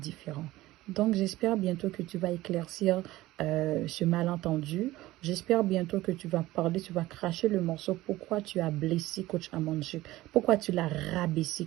Donc, j'espère bientôt que tu vas éclaircir ce malentendu. J'espère bientôt que tu vas parler, tu vas cracher le morceau. Pourquoi tu as blessé coach Amon Chic? Pourquoi tu l'as rabaissé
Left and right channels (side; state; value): left; quieter; 17.3 dB